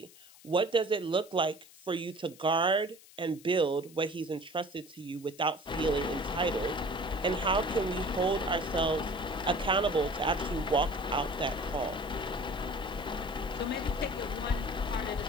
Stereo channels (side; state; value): left; noise; hiss, 22 dB below the sound